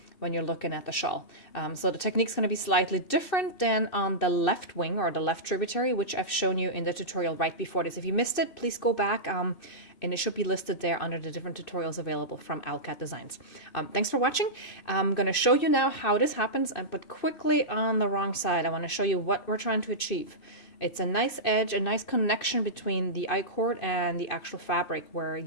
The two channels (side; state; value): right; late; 2.6 ms